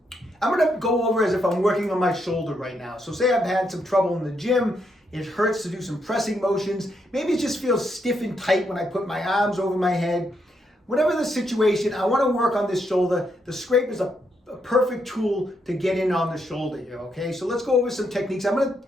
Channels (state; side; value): normal; both; correlation 0.78